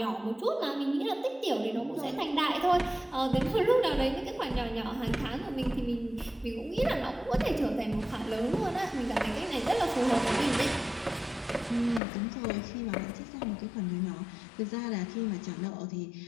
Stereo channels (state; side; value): drops out; right; at 12.0 s